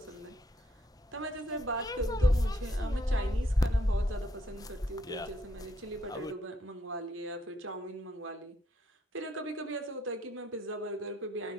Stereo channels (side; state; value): both; normal; correlation 0.72